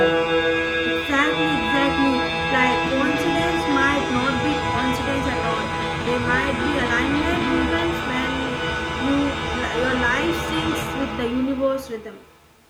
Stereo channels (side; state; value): both; identical; correlation 1.00